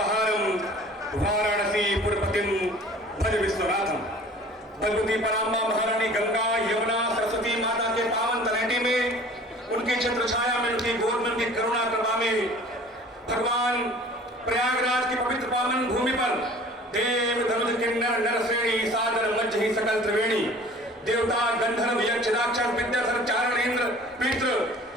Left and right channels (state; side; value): normal; both; correlation 0.47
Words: वाराणसी पुरपतिम भज विश्वनाथम। भगवती पराम्बा महारानी गंगा यमुना सरस्वती माता के पावन तलहटी में, उनकी छत्र छाया में, उनकी गोद में, उनकी करुणा कृपा में भगवान प्रयागराज की पवित्र पावन भूमि पर देव धनुष किन्नर नर श्रेणी सादर मज्ज ही सकल त्रिवेणी देवता गंधर्व यक्ष राक्षस विद्याधर चारण इंद्र पितृ